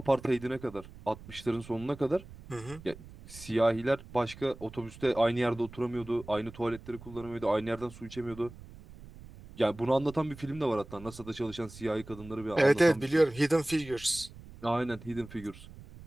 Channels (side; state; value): right; noise; rumble, 17 dB below the sound